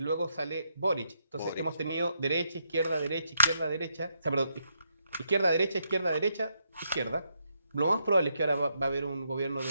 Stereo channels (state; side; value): inverted; both; correlation -0.79